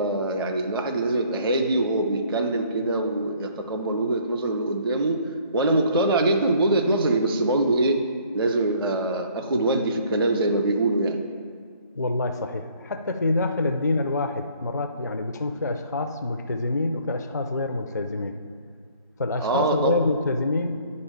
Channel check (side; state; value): both; inverted; correlation -0.59